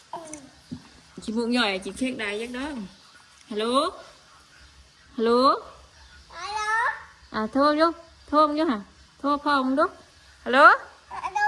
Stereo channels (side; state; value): both; identical; correlation 1.00